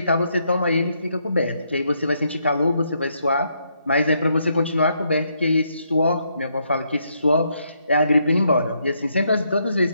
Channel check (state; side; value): inverted; both; correlation -0.76